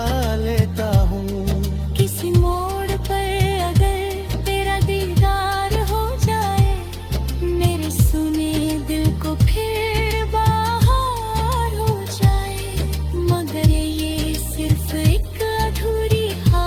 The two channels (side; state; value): both; identical; correlation 1.00